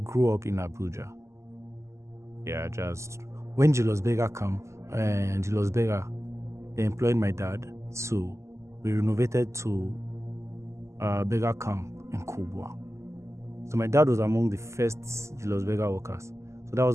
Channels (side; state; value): left; late; 0.13 ms